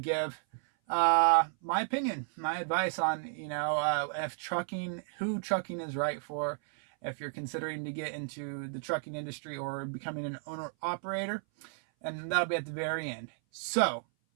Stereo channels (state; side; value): silent; left; 56 dB below the other